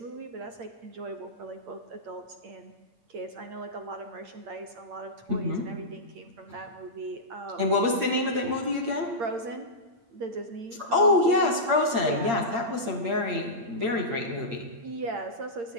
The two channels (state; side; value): late; left; 8.7 ms